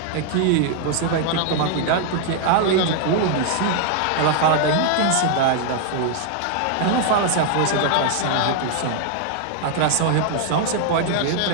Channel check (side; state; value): both; different; correlation 0.00